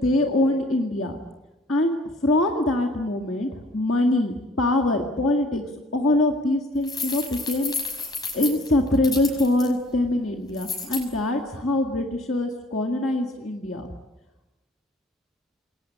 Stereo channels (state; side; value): normal; both; correlation 0.55